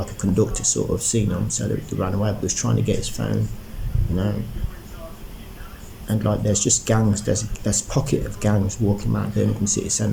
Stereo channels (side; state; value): both; identical; correlation 1.00